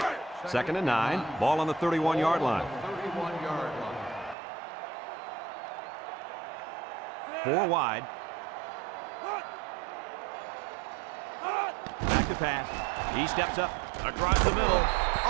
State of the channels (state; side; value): drops out; left; at 4.4 s